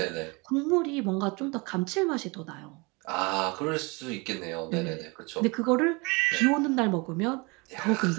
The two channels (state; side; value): quieter; left; 27.8 dB